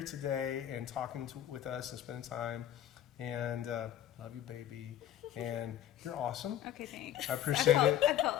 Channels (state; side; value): quieter; right; 11.3 dB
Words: today and talking with us and spending time. And love you, baby. And you're awesome. Okay, thanks. I appreciate it. I felt